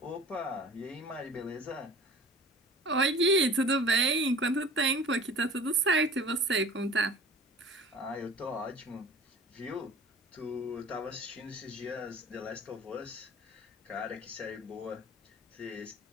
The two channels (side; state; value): both; normal; correlation 0.44